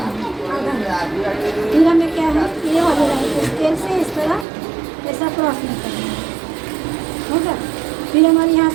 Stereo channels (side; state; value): left; drops out; at 4.5 s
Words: है, आधा इंच। फिर हमें क्या है, ये वाली लाइन को स्केल से इस तरह ऐसा क्रॉस नहीं करना है, होगा। फिर हमारी यहाँ